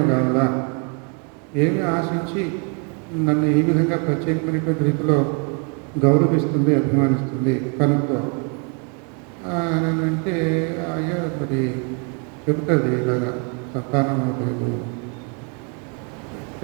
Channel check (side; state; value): left; quieter; 37.1 dB